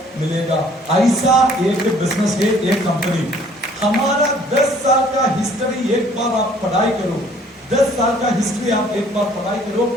मिलेगा। ऐसा एक बिजनेस है, एक कंपनी। हमारा 10 साल का हिस्ट्री एक बार आप पढ़ाई करो, 10 साल का हिस्ट्री आप एक बार पढ़ाई करो।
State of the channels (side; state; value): both; normal; correlation 0.57